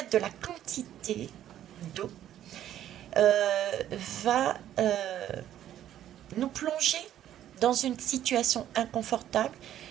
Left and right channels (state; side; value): quieter; left; 11.6 dB